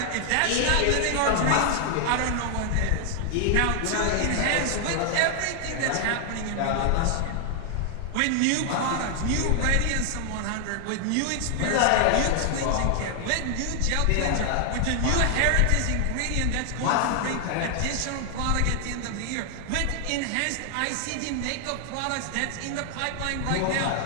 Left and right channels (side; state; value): both; different; correlation 0.00